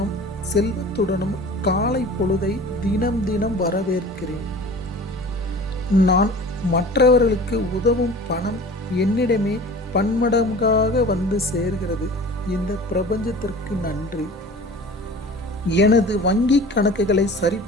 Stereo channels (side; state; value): both; normal; correlation 0.41